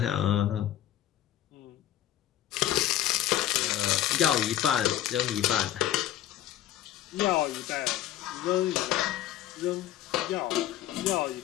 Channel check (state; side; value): quieter; right; 12.6 dB